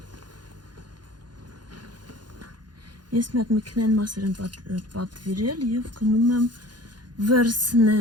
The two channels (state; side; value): late; left; 0.70 ms